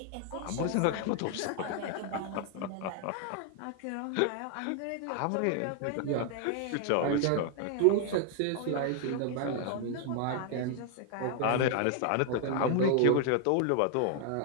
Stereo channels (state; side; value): different; both; correlation 0.00